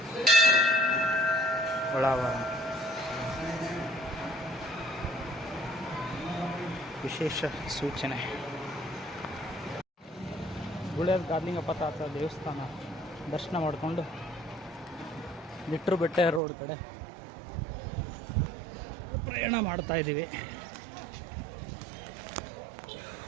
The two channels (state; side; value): drops out; left; at 16.4 s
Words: ಒಳಾವರಣ ವಿಶೇಷ ಸೂಚನೆ. ಗುಳ್ಳೆದ ಗಾರ್ಲಿಂಗಪ್ಪ ತಾತ ದೇವಸ್ಥಾನ ದರ್ಶನ ಮಾಡಿಕೊಂಡು ನಿಟ್ರು ಬೆಟ್ಟ ರೋಡ್ ಕಡೆ ಪ್ರಯಾಣ ಮಾಡ್ತಾ ಇದ್ದೀವಿ.